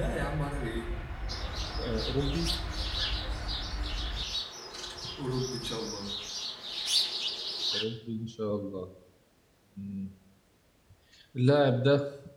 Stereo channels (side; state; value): both; identical; correlation 1.00